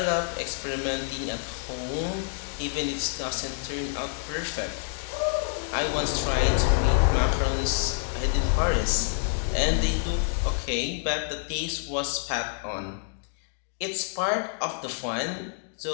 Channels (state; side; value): silent; right; digital silence